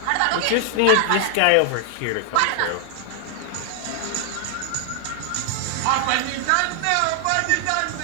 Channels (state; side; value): different; both; correlation 0.00